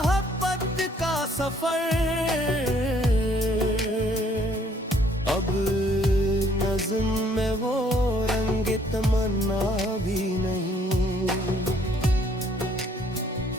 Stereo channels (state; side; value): normal; both; correlation 0.63